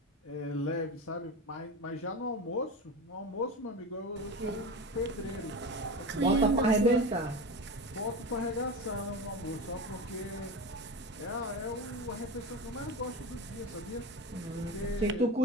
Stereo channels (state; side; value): normal; both; correlation 0.26